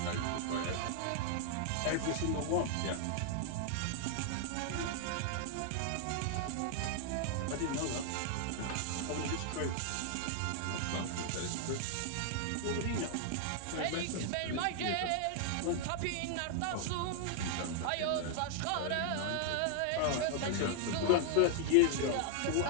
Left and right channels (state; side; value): different; both; correlation 0.00